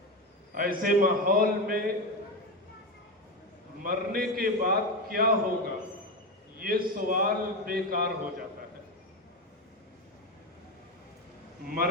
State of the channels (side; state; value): both; normal; correlation 0.16